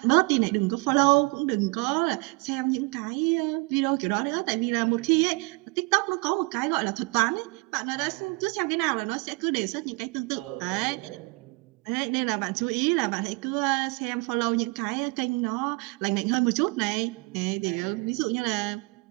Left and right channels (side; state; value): left; quieter; 28.2 dB